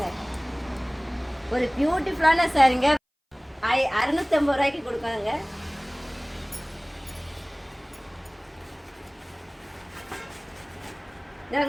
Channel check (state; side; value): identical; both; correlation 1.00